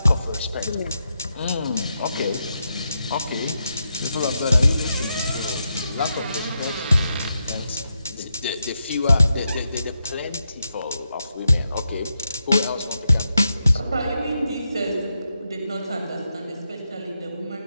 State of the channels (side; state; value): both; inverted; correlation -0.85